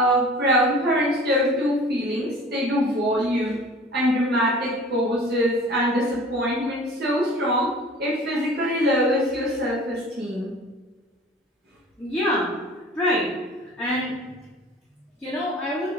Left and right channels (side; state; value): both; normal; correlation 0.44